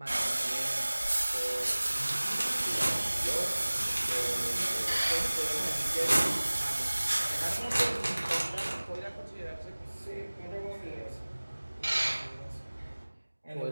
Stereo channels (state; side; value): inverted; both; correlation -1.00